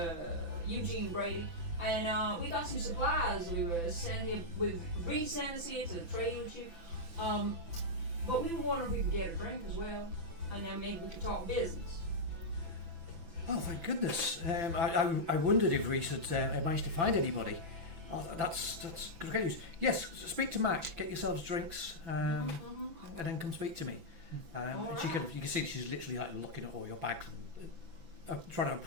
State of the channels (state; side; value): late; left; 6.0 ms